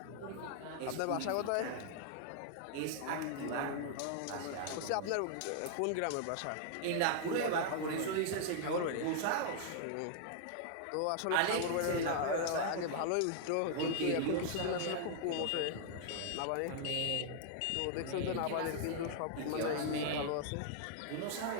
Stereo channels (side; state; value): both; different; correlation -0.01